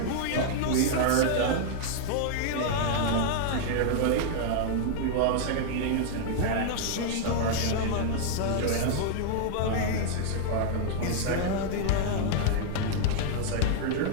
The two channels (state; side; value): different; both; correlation -0.01